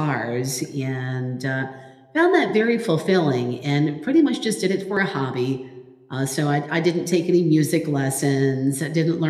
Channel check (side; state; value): both; identical; correlation 1.00